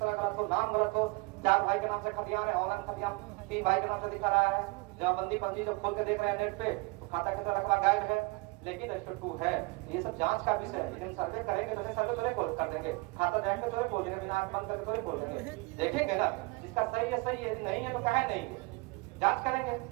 गलत हो, नाम गलत हो, 4 भाई के नाम से खतियान है, ऑनलाइन खतियान 3 भाई के नाम से दिखा रहा है, जमाबंदी पंजी जब खोल के देख रहे हैं नेट पे तो खाता किसरा रकबा गायब है, लेकिन रजिस्टर 2 है। ये सब जांच का विषय है। लेकिन सर्वे करेंगे तो सर्वे थोड़े खोल कर देंगे, खाता देख के थोड़े खोल देंगे, बिना आंख बंद करके थोड़े खोल देंगे, देखेंगे ना जिसका सही है सही है, यदि नहीं है तो काहे नहीं है, जांच करेंगे।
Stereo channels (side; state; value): left; quieter; 26.0 dB